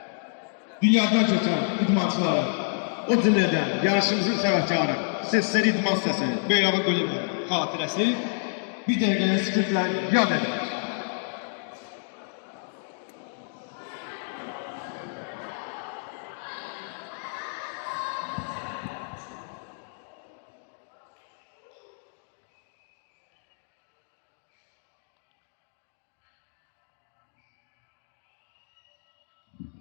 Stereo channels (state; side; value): silent; right; digital silence